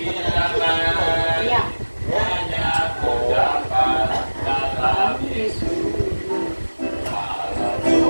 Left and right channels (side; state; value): both; inverted; correlation -1.00